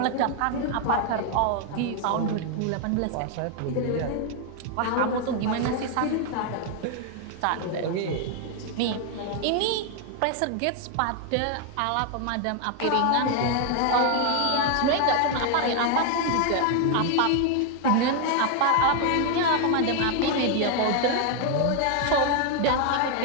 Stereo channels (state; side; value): different; both; correlation 0.00